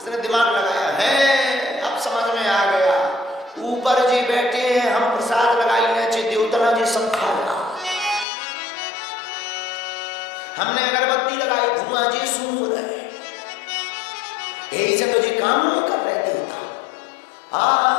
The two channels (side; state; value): right; drops out; at 8.2 s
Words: दिमाग लगाया है, अब समझ में आ गया, ऊपर जी बैठे हैं, हम प्रसाद लगाई नीचे देवतना जी सब खा रहा, हमने अगरबत्ती लगाई, धुआं जी सूंघ रहे, यही से तो जी काम नहीं कर रहे देवता।